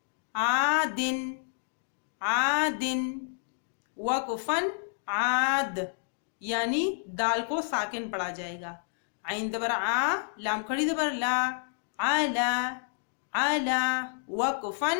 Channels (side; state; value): right; silent; digital silence